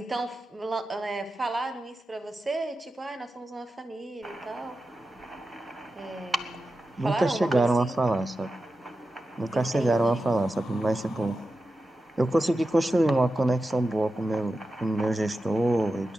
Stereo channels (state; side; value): normal; both; correlation 0.91